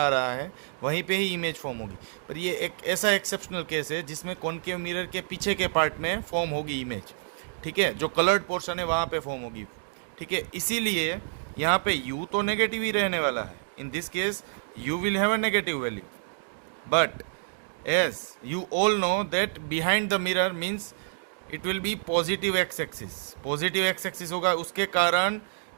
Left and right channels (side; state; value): left; silent; digital silence